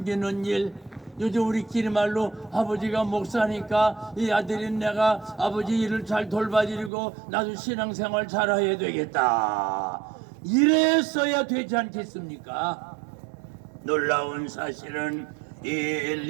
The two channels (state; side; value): drops out; left; at 6.9 s